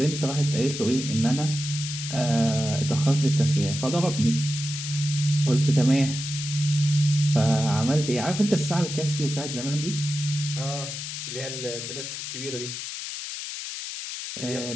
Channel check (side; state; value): left; noise; hiss, 7 dB below the sound